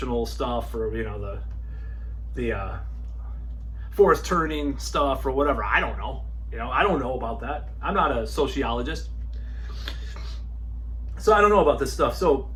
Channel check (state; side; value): identical; both; correlation 1.00